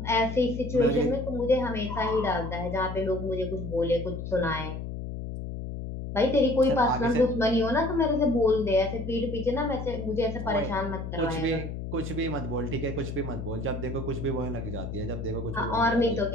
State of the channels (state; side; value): noise; left; hum, 6 dB below the sound